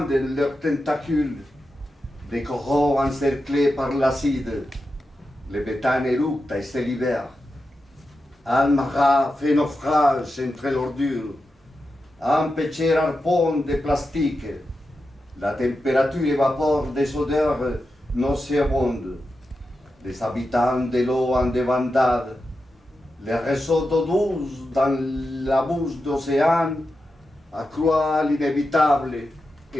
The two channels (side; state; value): both; normal; correlation 0.90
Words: leurs tentacules. Des coraux encerclés par l'acide. Le béthane éructe et se libère. Almara fait naufrage entre l'ordure. Un petit harpon de plastique. La température évapore des odeurs nauséabondes. Les habitants de l'eau en débandade Les réseaux d'eau douce dans la bouche d'océan accroît l'inévitable